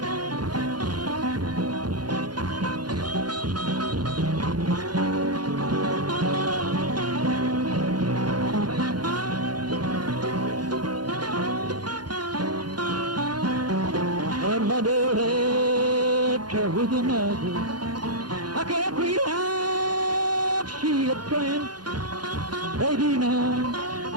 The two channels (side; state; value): left; late; 0.70 ms